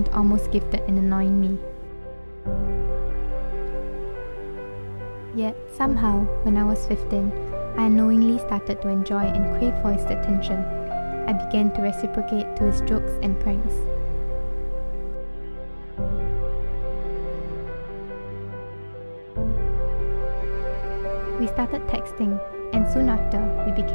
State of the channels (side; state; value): both; inverted; correlation -1.00